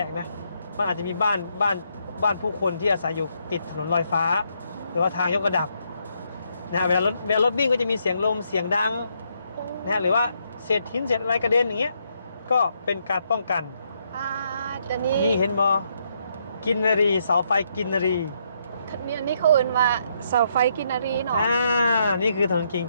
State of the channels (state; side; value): inverted; both; correlation -0.75